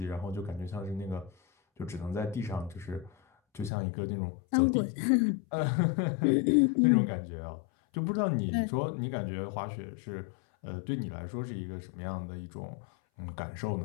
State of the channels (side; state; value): right; drops out; at 3.7 s